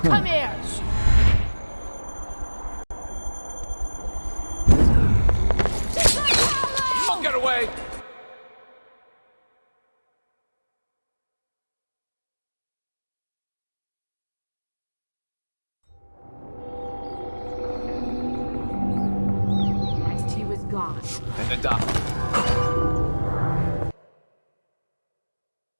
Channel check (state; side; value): inverted; both; correlation -1.00